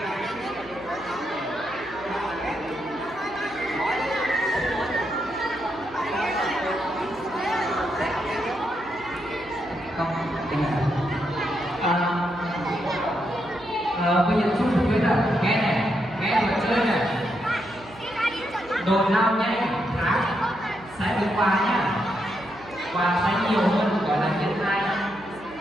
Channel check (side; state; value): right; noise; hum, 21 dB below the sound